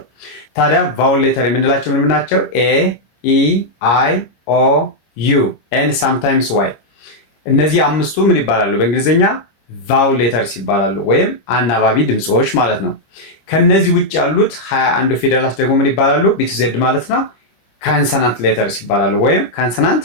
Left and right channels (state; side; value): late; right; 26 ms